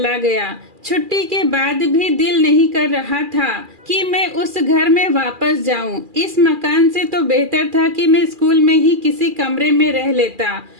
गया। छुट्टी के बाद भी दिल नहीं कर रहा था कि मैं उस घर में वापस जाऊं। इस मकान से तो बेहतर था कि मैं स्कूल में ही किसी कमरे में रह लेता।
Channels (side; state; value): left; late; 2.4 ms